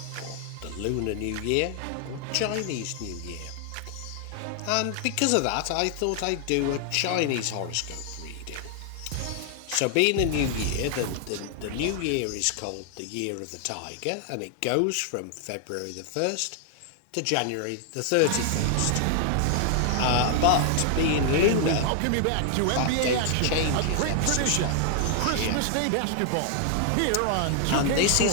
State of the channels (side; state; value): both; different; correlation 0.00